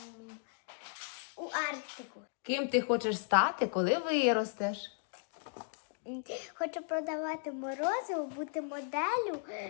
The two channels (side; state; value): right; silent; digital silence